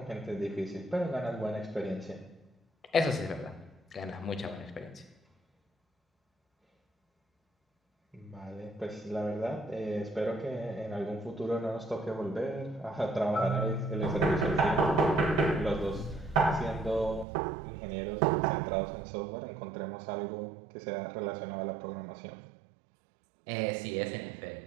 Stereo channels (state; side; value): drops out; left; at 17.2 s